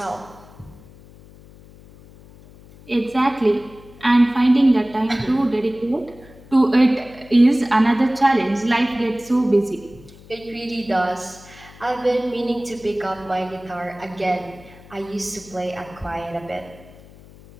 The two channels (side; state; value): left; noise; hum, 22 dB below the sound